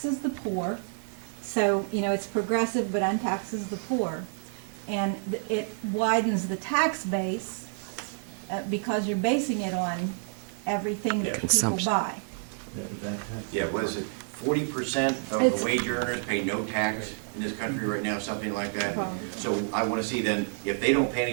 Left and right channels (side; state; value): left; silent; 59 dB below the other